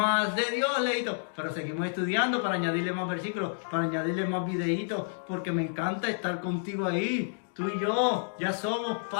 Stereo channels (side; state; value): right; silent; digital silence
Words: de Dios, leíto. Pero seguimos estudiando para añadirle más versículos, para añadirle más videitos, porque me encanta estar contigo ahí. Tú y yo ya somos